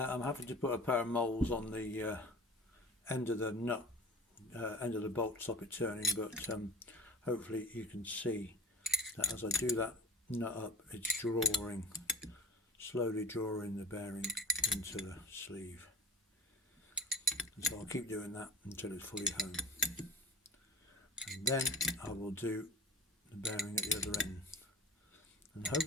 I'm having to put a pair of moles on the end of the nut, end of the bolt to stop it turning, but hopefully you can see that as I do that nut up, it's slowly drawing the bearing into the sleeve. And so I'll keep doing that until it's fully home. And then I will do the bearing at the other end. And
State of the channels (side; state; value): both; normal; correlation 0.36